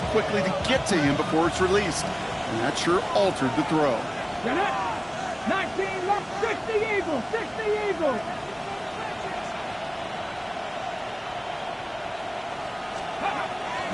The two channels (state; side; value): identical; both; correlation 1.00